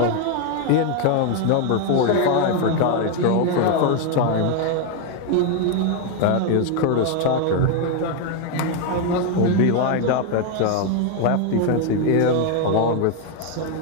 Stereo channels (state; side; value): different; both; correlation 0.01